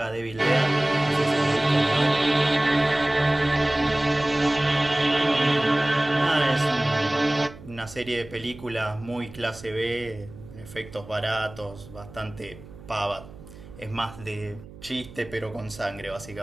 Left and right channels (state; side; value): noise; right; hum, 18 dB below the sound